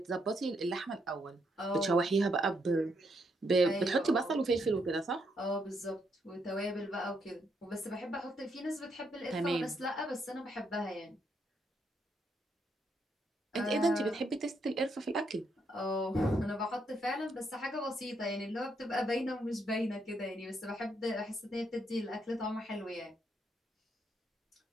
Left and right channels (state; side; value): normal; both; correlation 0.76